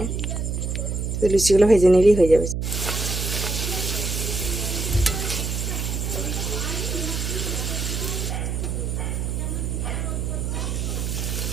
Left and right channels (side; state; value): right; noise; hum, 2 dB below the sound